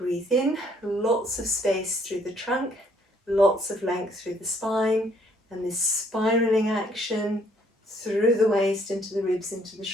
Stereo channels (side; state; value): both; normal; correlation 0.65